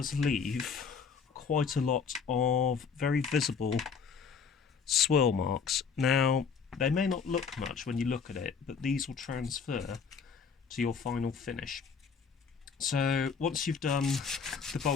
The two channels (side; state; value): right; quieter; 6.0 dB